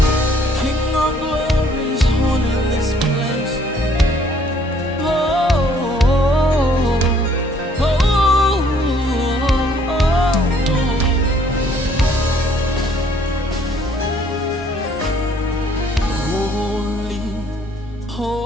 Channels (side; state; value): both; normal; correlation 0.62